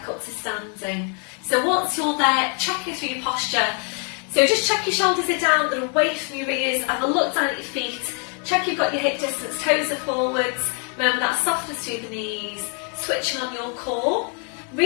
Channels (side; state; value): right; quieter; 39.8 dB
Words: up to standing. So once you're there, checking through your posture. So just check your shoulders are down, they're away from your ears, have a look down at your feet, check you've got your hip distance, toes are forwards, remember that softness through the knees, switching on your core.